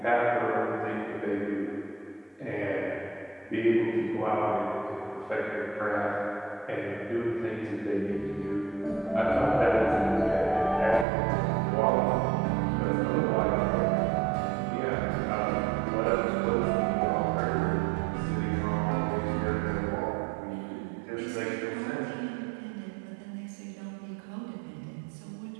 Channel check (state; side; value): drops out; left; at 11.1 s